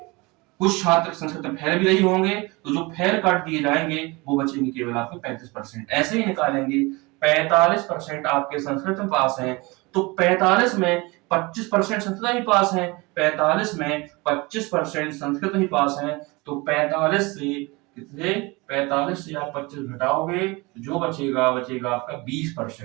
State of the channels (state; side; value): quieter; left; 24.9 dB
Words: कुछ छात्र संस्कृत में फेल भी नहीं होंगे, तो जो फेल काट दिए जाएंगे वो बचेंगे केवल आपके 35%। ऐसे ही निकालेंगे 45% आपके संस्कृत में पास हैं, तो 45 में 25% संस्कृत में पास हैं, 45 में 25% संस्कृत में पास हैं, तो 45 से कितने? 45 से आप 25 घटाओगे जो बचेगा आपका